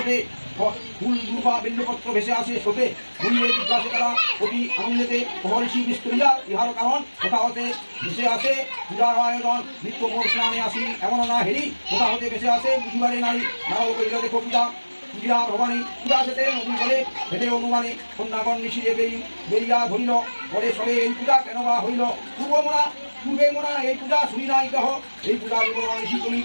ফুল দুর্বা বেল্লপত্র ভেসে আসে স্রোতে ভুলিয়ে জিজ্ঞাসে তারা অতি আনন্দেতে মহর্ষি বিস্তরিয়া ইহার কারণ কোথা হতে ভেসে আসে পূজার আয়োজন নিত্য মোর স্নানে আসি এমন না হেরি কোথা হতে ভেসে আসে বুঝিবারে নারী নারদ করিল দেখো পূজা ভবানী পূজা যেতে নদী বলে হেঁটে অনুমানে কন্যাগণ নিশিরে বেরিয়া ধরিল পরে সবে এই পূজা কেন বা হইল পূর্বে মোরা এই পূজা শুনি নাই কহ এই পূজা বিবরণ ঋষি তুমি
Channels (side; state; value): both; inverted; correlation -1.00